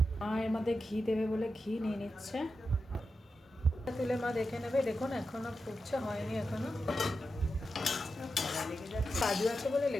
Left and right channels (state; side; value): normal; both; correlation 0.89